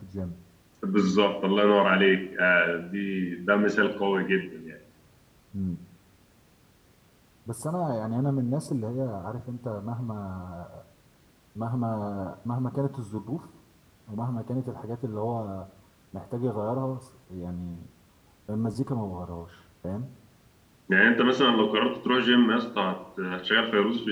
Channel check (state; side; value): identical; both; correlation 1.00